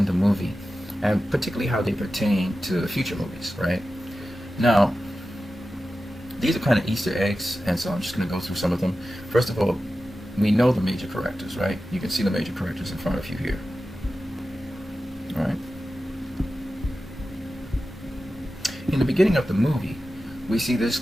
the movie, and particularly how they pertain to future movies, right? Now, these are kind of Easter eggs, and so I'm just going to go through some of them. First of all, we know the major characters, right? You can see the major characters in front of you here. Alright. In the beginning of the movie, we see this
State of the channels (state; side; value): normal; both; correlation 0.93